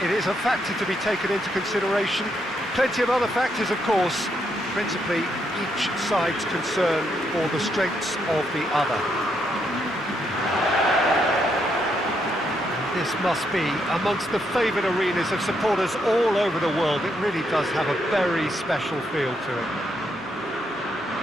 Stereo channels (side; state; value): both; normal; correlation 0.77